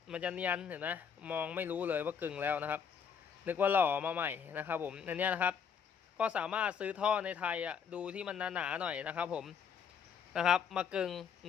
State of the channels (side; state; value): right; quieter; 7.0 dB